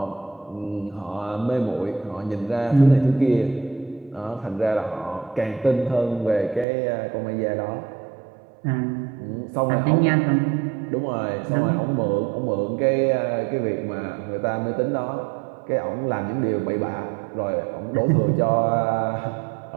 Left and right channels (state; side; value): drops out; left; at 6.7 s